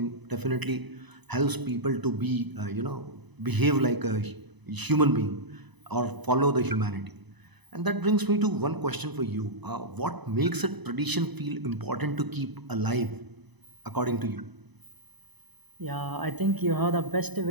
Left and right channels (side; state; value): left; late; 0.99 ms